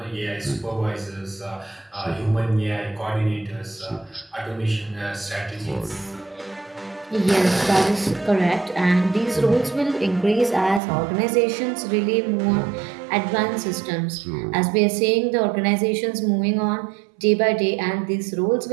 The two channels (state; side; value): drops out; left; at 10.8 s